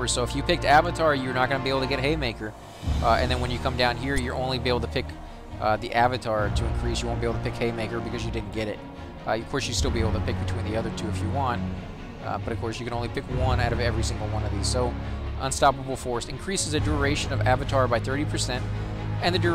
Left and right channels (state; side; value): identical; both; correlation 1.00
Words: so if you picked Avatar, you're not going to be able to get Haymaker. And then when you come down here, you're only be able to pick the Avatar to increase. You won't be able to pick Haymaker because you didn't get it. Of course, you still be able to pick between the other two if you want. But of course, you can only pick one out of every single one of these. So Unstoppable Force increases the duration of Avatar by 30%, and the